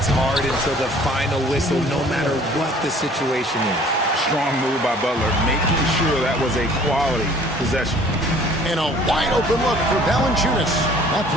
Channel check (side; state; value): both; normal; correlation 0.53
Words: hard until the final whistle, no matter what the situation is. Strong move by Butler, making sure that was a quality possession. And a wide open look for Valanciunas. That